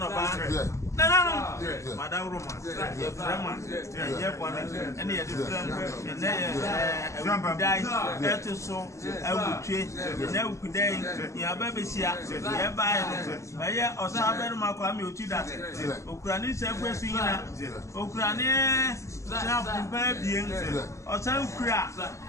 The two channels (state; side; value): late; right; 0.14 ms